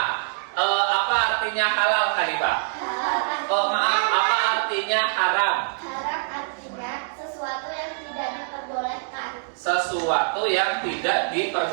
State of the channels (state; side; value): silent; left; digital silence